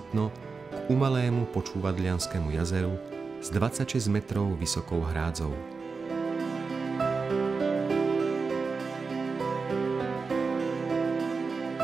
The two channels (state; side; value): quieter; left; 4.6 dB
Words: k umalému Počúvadlianskému jazeru s 26 metrov vysokou hrádzou.